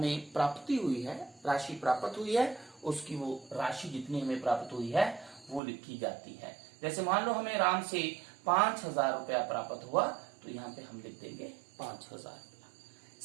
प्राप्ति हुई है, राशि प्राप्त हुई है, उसकी वो राशि जितनी हमें प्राप्त हुई है वो लिखी जाती है। जैसे मान लो हमें राम से 5,000 रुपया प्राप्त हुआ तो यहाँ पे हम लिख देंगे 5,000 रुपया।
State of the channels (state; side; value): drops out; left; at 5.6 s